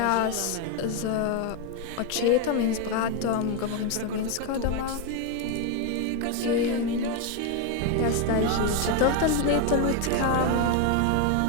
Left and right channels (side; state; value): both; different; correlation 0.02